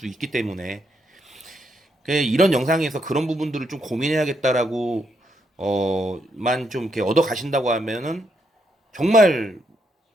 있기 때문에 이런 영상에서 그런 부분들을 좀 고민해야겠다라고 만 좀 이렇게 얻어 가신다고 하면은 정말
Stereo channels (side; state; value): both; normal; correlation 0.78